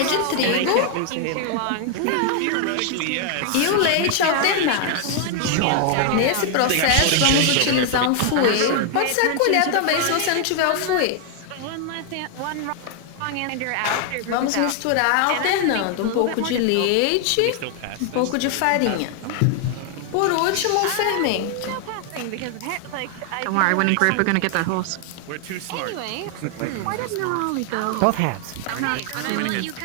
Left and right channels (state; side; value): different; both; correlation 0.00